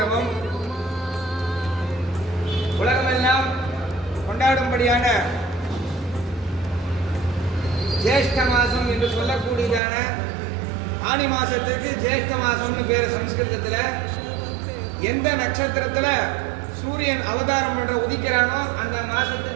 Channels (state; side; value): drops out; left; at 9.8 s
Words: உலகமெல்லாம் கொண்டாடும்படியான ஜேஷ்ட மாசம் என்று சொல்லக்கூடியதான ஆனி மாசத்துக்கு ஜேஷ்ட மாசம்னு பேர். சம்ஸ்கிருதத்தில் எந்த நட்சத்திரத்தில் சூரியன் அவதாரம் பண்ற உதிக்கிறானோ அந்த